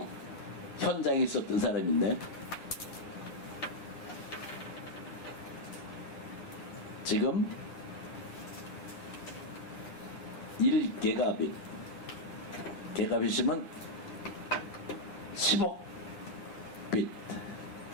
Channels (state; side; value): late; right; 9.8 ms